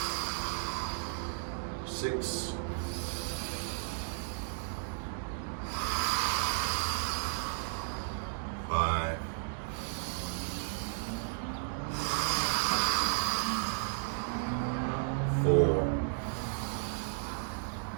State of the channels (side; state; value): left; silent; digital silence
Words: 6. 5. 4.